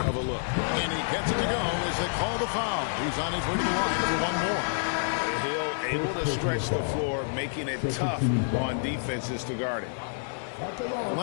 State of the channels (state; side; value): silent; right; 59 dB below the other